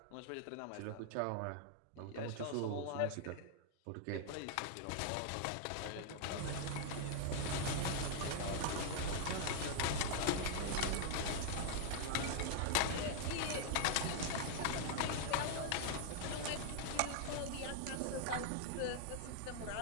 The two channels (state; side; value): different; both; correlation 0.00